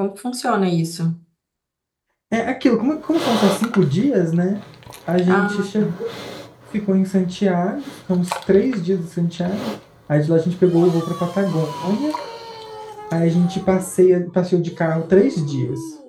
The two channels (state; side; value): identical; both; correlation 1.00